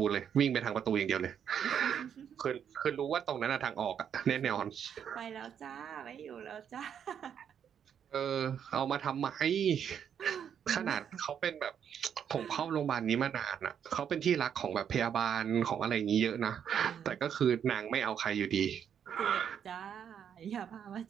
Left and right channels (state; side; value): quieter; left; 8.4 dB